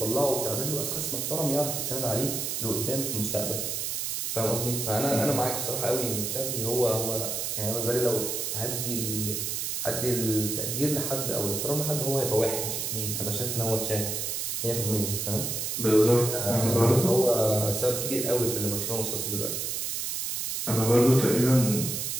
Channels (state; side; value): noise; right; hiss, 2 dB below the sound